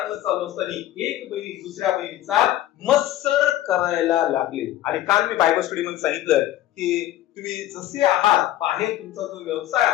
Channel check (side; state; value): right; quieter; 13.8 dB